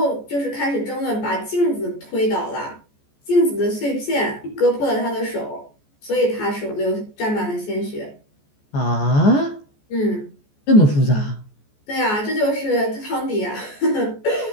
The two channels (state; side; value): late; right; 14 ms